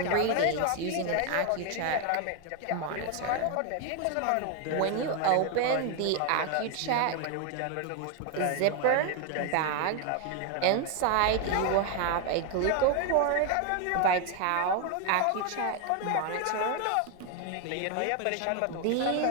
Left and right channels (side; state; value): both; different; correlation 0.01